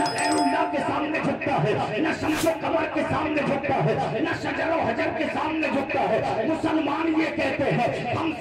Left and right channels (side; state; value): both; identical; correlation 1.00